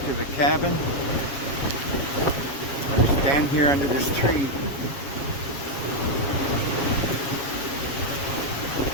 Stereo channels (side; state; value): right; late; 7.3 ms